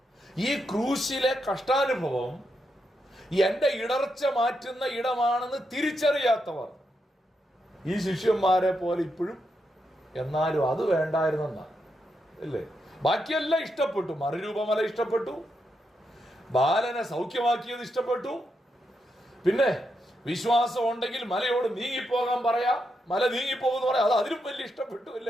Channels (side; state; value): both; normal; correlation 0.83